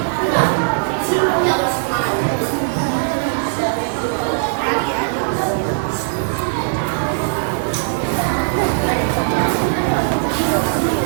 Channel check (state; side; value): silent; left; digital silence